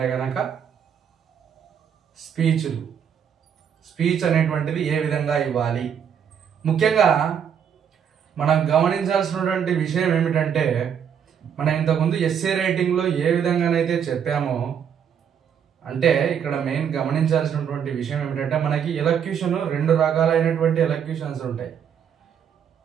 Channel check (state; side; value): quieter; left; 8.1 dB